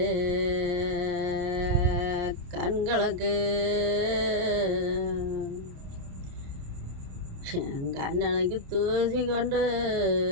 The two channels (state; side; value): late; left; 28 ms